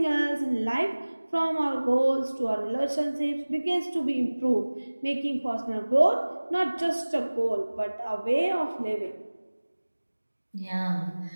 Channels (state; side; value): inverted; both; correlation -1.00